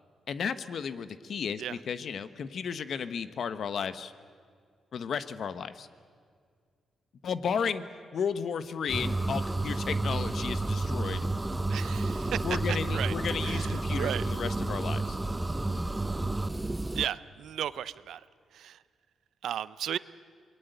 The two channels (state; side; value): normal; both; correlation 0.82